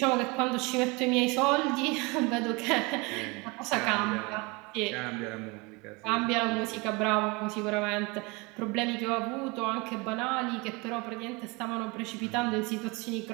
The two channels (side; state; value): left; quieter; 26.9 dB